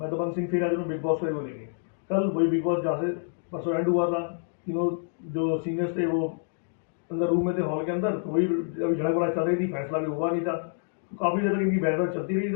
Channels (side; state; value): right; silent; digital silence